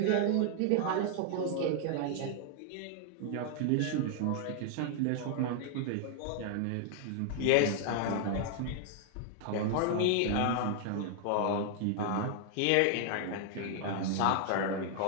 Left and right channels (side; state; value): both; different; correlation 0.00